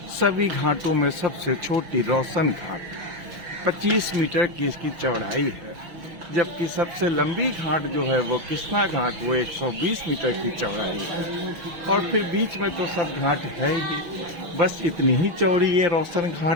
सभी घाटों में सबसे छोटी रोशन घाट, 25 मीटर की इसकी चौड़ाई है, जबकि सबसे लंबी घाट जो है वो कृष्णा घाट, वो 120 मीटर की चौड़ाई है। और फिर बीच में तो सब घाट है ही, बस इतनी ही चौड़ी ये रोशन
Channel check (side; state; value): left; late; 6.2 ms